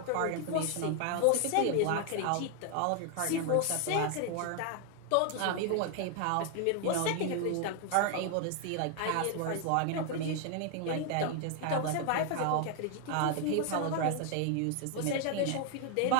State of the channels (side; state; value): both; different; correlation 0.00